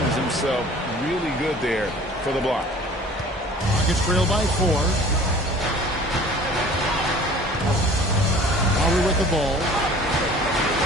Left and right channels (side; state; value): both; normal; correlation 0.47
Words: himself really good there for the block. Rockets trail by 4. Lowry with the ball.